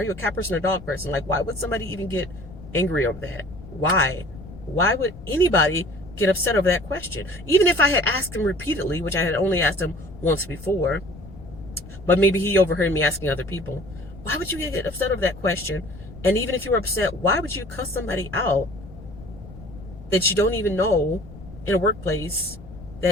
you a cat person or dog person? Like, why would somebody even get angry over that? Why would anybody get upset over that question? Even if I had asked him repeatedly, which I had only asked him once before, but maybe he overheard me asking other people, why would you get upset over that question? And even if you were upset, why would you cuss somebody out that you don't even know in a workplace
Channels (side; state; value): left; noise; rumble, 16 dB below the sound